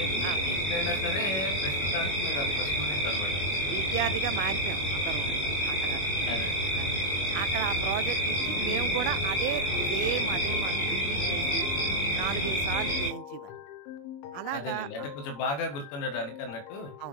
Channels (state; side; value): late; right; 21 ms